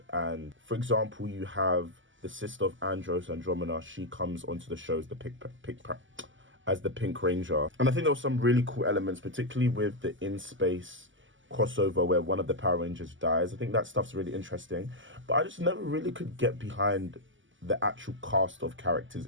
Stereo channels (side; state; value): left; late; 0.55 ms